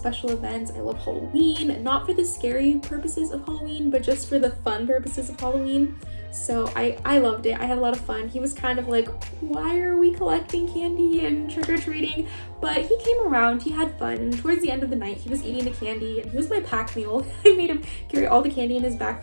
events. I love Halloween, not for the scary purposes of Halloween, but just for the fun purposes of Halloween. So I loved it. I had a lot of fun. He was kind of like, why are we collecting candy and trick-or-treating? But he came around, he had fun, and towards the end of the night, he was eating the candy, and he was my pack mule. I made him carry all the candy in his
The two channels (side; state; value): both; inverted; correlation -1.00